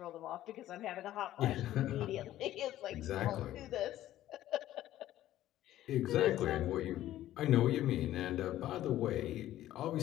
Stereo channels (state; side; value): quieter; right; 13.6 dB